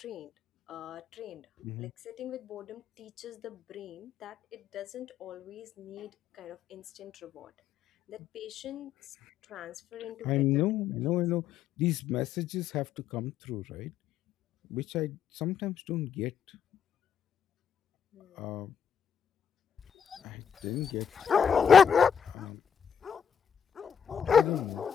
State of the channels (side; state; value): right; quieter; 7.6 dB